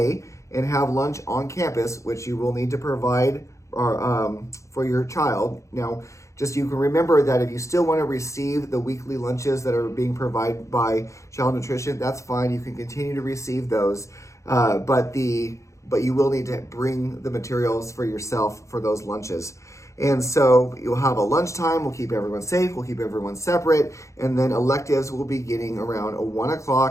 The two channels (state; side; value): late; right; 0.15 ms